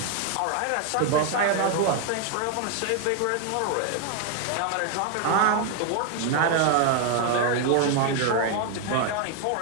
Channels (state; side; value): different; both; correlation 0.01